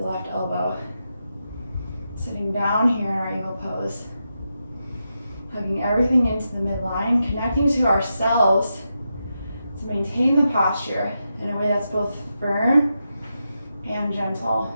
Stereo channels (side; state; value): both; inverted; correlation -0.87